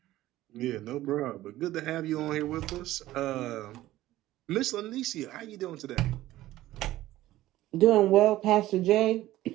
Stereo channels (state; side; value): quieter; left; 15.5 dB